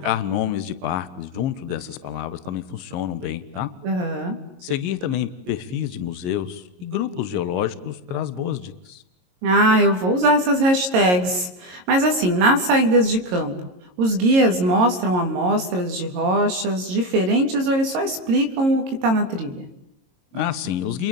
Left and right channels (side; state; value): left; late; 22 ms